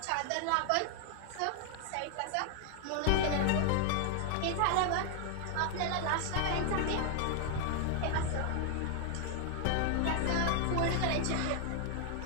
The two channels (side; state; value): both; different; correlation 0.00